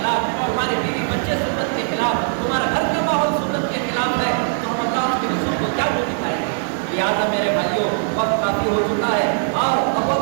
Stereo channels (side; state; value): left; silent; digital silence